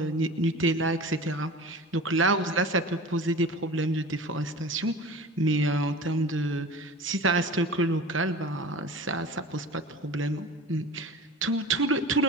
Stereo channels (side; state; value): both; normal; correlation 0.36